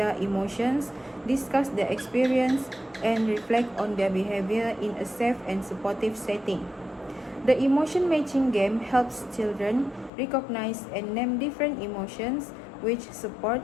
emotions, discuss their experience, and reflect on their behavior in a safe and supportive setting. The emotion matching game helps children recognize and name different emotions, which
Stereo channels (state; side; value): drops out; right; at 10.1 s